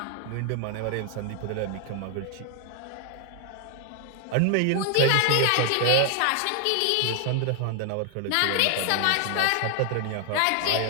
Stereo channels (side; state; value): both; different; correlation 0.00